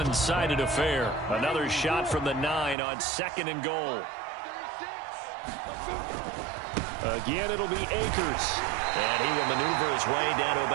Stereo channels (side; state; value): left; drops out; at 2.8 s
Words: affair. Another shot from the 9 on second and goal. Again, it'll be Akers. And he will maneuver his way down to